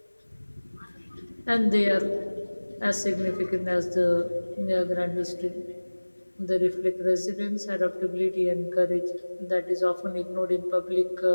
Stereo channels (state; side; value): inverted; both; correlation -1.00